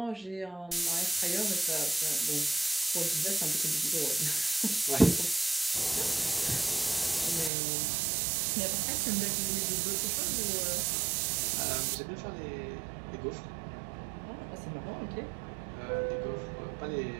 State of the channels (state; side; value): drops out; left; at 7.5 s